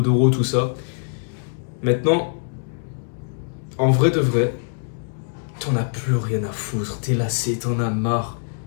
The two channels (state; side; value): silent; right; digital silence